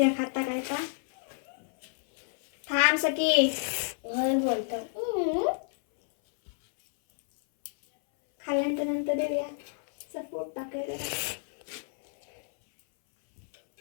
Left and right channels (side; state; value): right; silent; 58 dB below the other